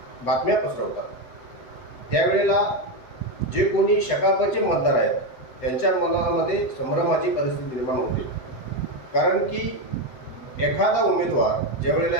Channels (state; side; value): late; right; 8.0 ms